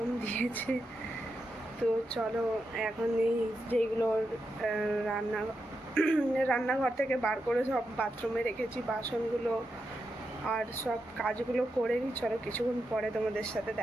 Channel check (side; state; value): both; normal; correlation 0.86